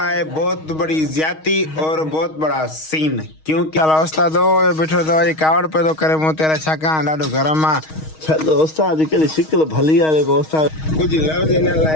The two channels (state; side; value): late; right; 6.4 ms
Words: है बहुत बड़ी ज्यादती और बहुत बड़ा सीन। क्योंकि उस्ताद बैठो तो ये कावड़ पे तो करे मुँह तेरा छका ॾाढो गरम आ। चलो उस्ताद कहिड़ी शिकिल भली आहे जेको उस्ताद कुछ लफ्ज़ इन